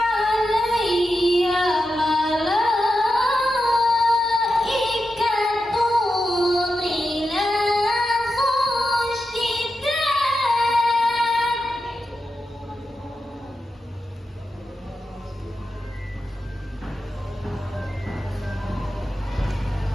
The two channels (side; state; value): both; normal; correlation 0.89